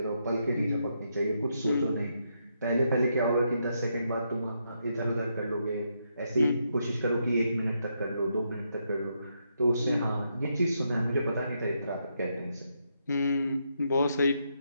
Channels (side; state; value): both; inverted; correlation -0.80